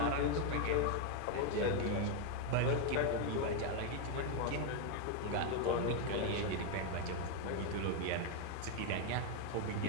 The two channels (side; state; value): both; different; correlation 0.01